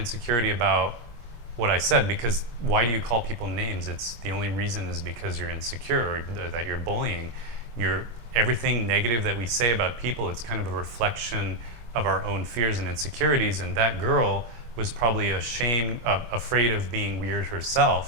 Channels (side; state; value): left; late; 25 ms